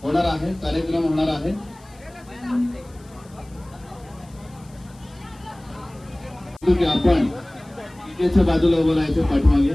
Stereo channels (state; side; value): noise; left; hiss, 28 dB below the sound